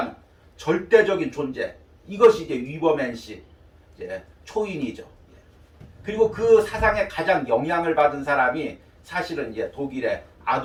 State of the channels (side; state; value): both; identical; correlation 1.00